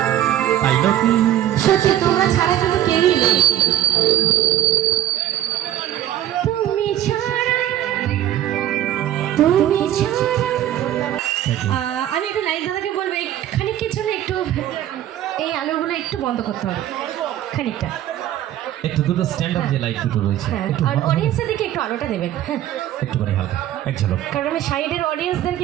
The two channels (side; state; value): left; quieter; 12.3 dB